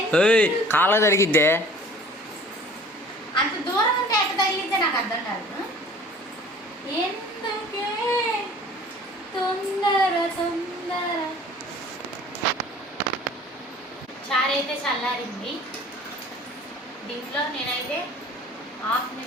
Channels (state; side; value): normal; both; correlation 0.48